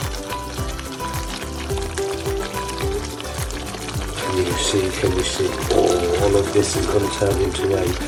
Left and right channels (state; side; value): identical; both; correlation 1.00